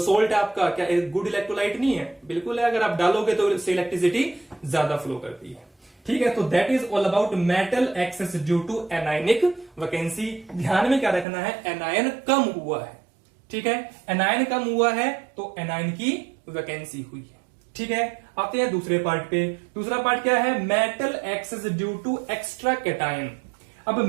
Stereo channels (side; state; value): left; drops out; at 11.2 s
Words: आपका क्या गुड इलेक्ट्रोलाइट नहीं है, बिल्कुल है। अगर आप डालोगे तो इससे इलेक्ट्रिसिटी ज्यादा फ्लो करती है। ठीक है, तो that is all about metal excess due to anionic vacancy. ध्यान में क्या रखना है, एनायन कम हुआ है। ठीक है, एनायन कम हुआ है तो एनायन की वैकेंसी हुई है। ठीक है, आते हैं दूसरे पार्ट पे। दूसरा पार्ट क्या है, metal excess due to extra cation. अब